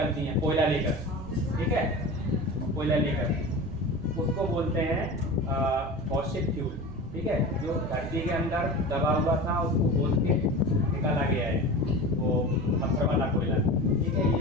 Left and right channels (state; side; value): noise; right; rumble, 14 dB below the sound